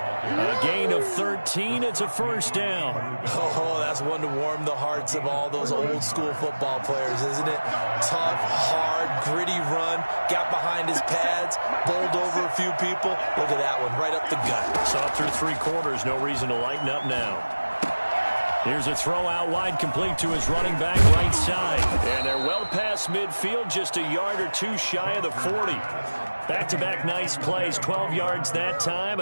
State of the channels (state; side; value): inverted; both; correlation -1.00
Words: gain of 13. It's a first down. Oh, that's one to warm the hearts of all those old school football players, isn't it? Tough, hard, gritty run. Got behind his pads, bowled over a few people. Look at that one, right up the gut. Saw through 3 quarters. No reason to lighten up now. Here's a throw out wide, complete to his running back right side. And they're well past midfield, just a yard or 2 shy of the 40. Back-to-back nice plays, 12 yards that time